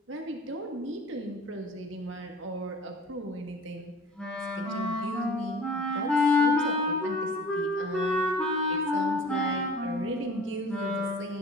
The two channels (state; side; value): normal; both; correlation 0.45